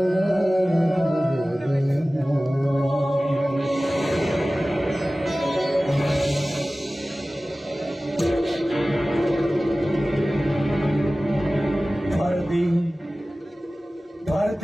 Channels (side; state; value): both; normal; correlation 0.97